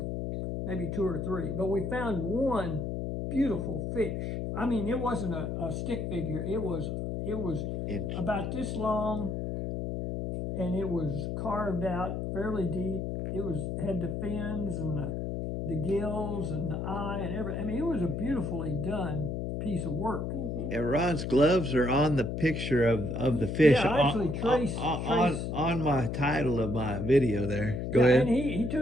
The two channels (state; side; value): noise; left; hum, 3 dB below the sound